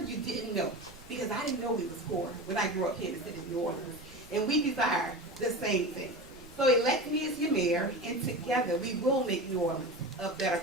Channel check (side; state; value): both; normal; correlation 0.28